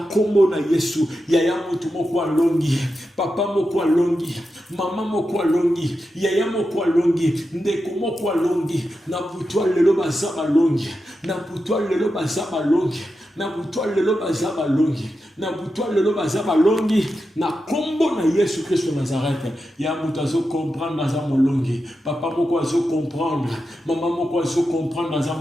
kombo na Yesu yaya mutu moko alongi papa moko alongi mama moko alongi yaya moko alongi ndeko moko alongi na butwa lelo bazaba longi na butwa lelo bazaba longi na butwa lelo bazaba longi na butwa lelo bazaba longi na kombo na Yesu Christ de Nazareth ya mutazo comprendre na molongi papa moko azo comprendre mama moko azo comprendre na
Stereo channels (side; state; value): both; normal; correlation 0.89